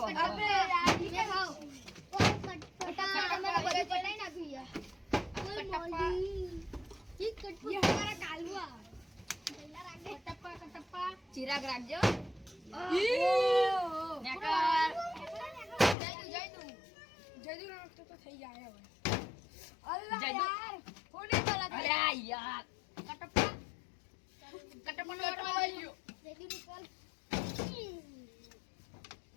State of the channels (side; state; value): right; drops out; at 16.0 s